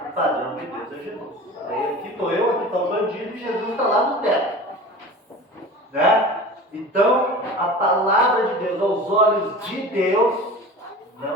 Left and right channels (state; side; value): normal; both; correlation 0.37